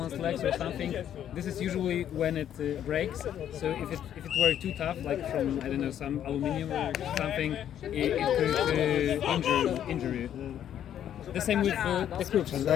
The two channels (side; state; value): right; quieter; 10.3 dB